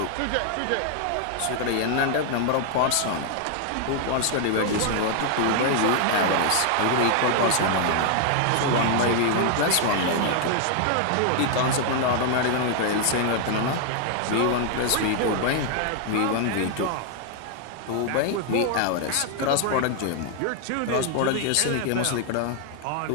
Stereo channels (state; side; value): different; both; correlation 0.00